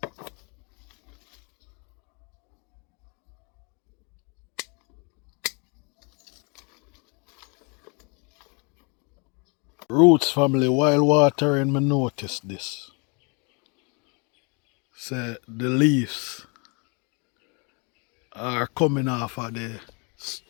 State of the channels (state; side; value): quieter; right; 33.5 dB